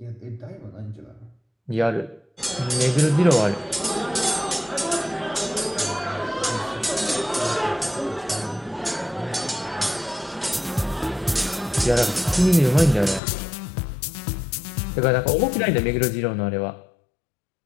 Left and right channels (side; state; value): right; drops out; at 13.2 s